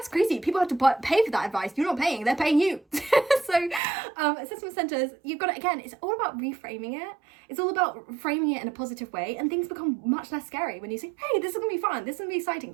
crazy. People have to pay for that advice. You're not paying, they're paying you. So assessment centers, you've got to, again, it's all about reframing it. It's all about framing it in a positive way, and things become much less scary when you say, hey, this is going to be fun. This is going to be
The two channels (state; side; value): drops out; left; at 3.8 s